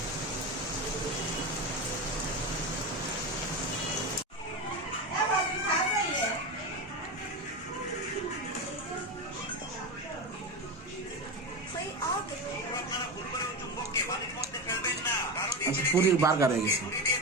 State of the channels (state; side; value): normal; both; correlation 0.20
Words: আচ্ছা, পুরীর বার্গার হয়ে গেছে।